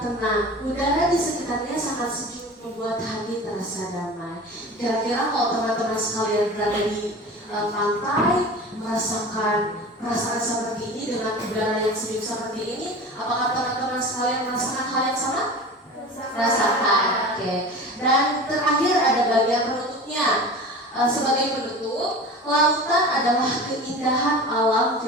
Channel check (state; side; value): normal; both; correlation 0.35